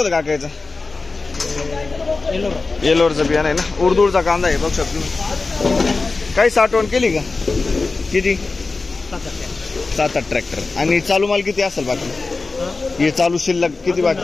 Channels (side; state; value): right; quieter; 3.8 dB